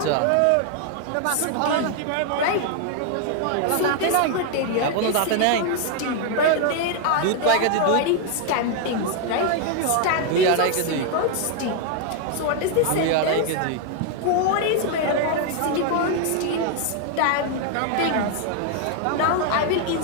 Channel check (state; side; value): different; both; correlation 0.00